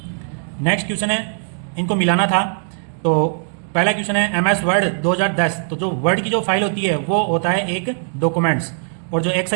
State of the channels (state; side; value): silent; left; digital silence